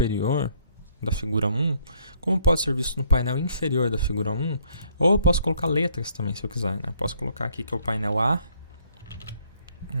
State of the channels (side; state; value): both; inverted; correlation -0.65